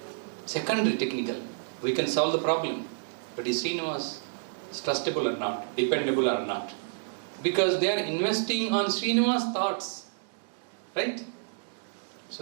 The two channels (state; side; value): silent; left; digital silence